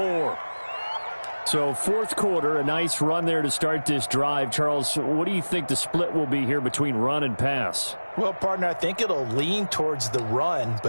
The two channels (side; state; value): both; inverted; correlation -1.00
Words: So 4th quarter, a nice run there to start this drive. Charles, what do you think the split will be here between run and pass? Well, partner, I think it'll lean towards the run,